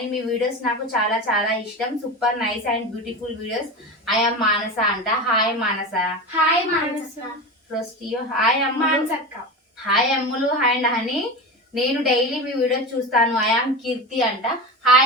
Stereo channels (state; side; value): normal; both; correlation 0.25